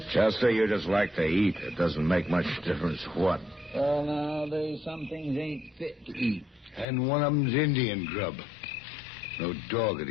Chester, you just like to eat. It doesn't make much difference what. Well, nowadays, some things ain't fit to eat. And one of them's Indian grub. No dog would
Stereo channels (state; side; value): drops out; right; at 6.9 s